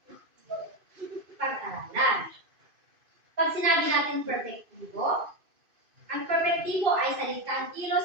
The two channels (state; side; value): late; left; 2.5 ms